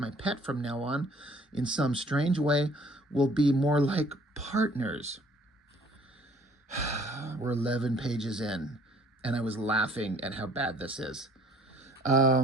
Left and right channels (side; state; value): both; normal; correlation 0.57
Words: pet from now on. In some strange way, we'll be more like partners." We're 11 pages in, and I was laughing at how bad this is.